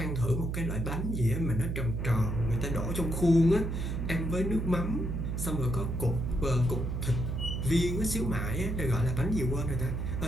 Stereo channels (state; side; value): noise; right; hum, 2 dB below the sound